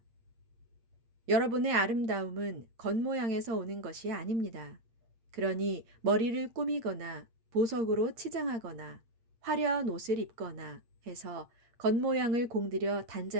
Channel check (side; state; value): left; late; 8.6 ms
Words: 여러분의 아름다움은 겉모양에서 오는 것이 아닙니다. 그러니 머리를 꾸미거나 보석으로 치장하거나 화려한 옷을 입거나 해서 겉모양을 공들여